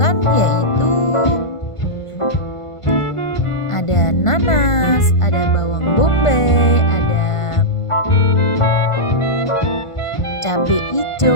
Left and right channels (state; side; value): late; right; 1.5 ms